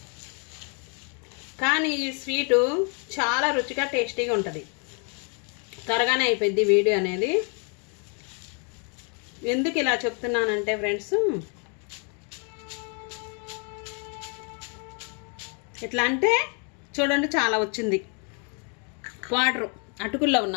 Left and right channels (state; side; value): quieter; right; 38.3 dB